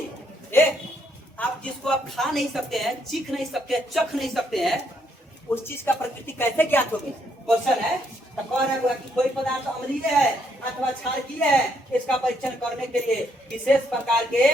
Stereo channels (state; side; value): normal; both; correlation 0.73